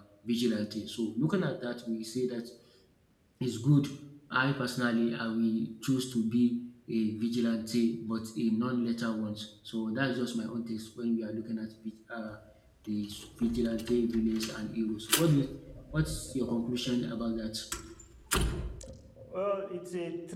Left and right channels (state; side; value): identical; both; correlation 1.00